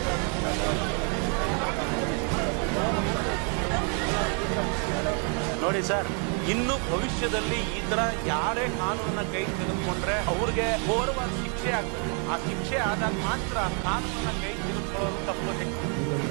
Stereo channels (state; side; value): quieter; left; 39.5 dB